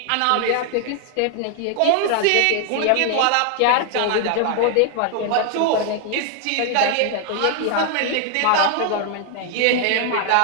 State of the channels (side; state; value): both; different; correlation 0.00